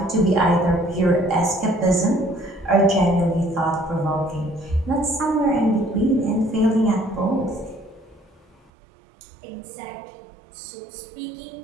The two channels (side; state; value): left; drops out; at 8.7 s